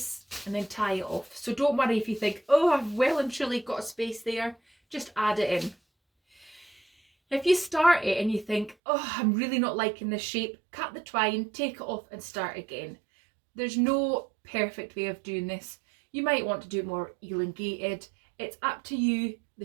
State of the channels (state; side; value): drops out; left; at 8.8 s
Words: and then tie it off. So don't worry if you think, oh, I've well and truly got a space there, just add it in. If you start it and you think, oh, I'm really not liking this shape, cut the twine, take it off and start again. There's no perfect way of doing this. You might want to do it more elongated. It's up to you, the